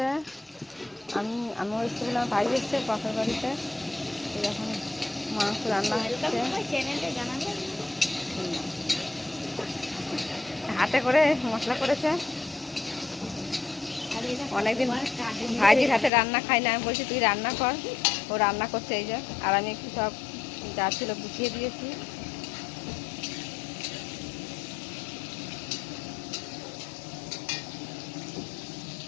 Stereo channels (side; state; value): right; drops out; at 16.1 s